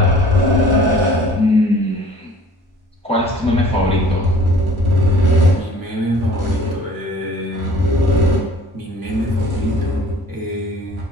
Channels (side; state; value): both; normal; correlation 0.50